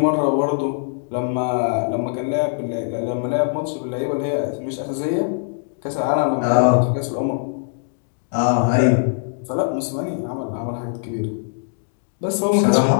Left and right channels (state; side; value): silent; right; digital silence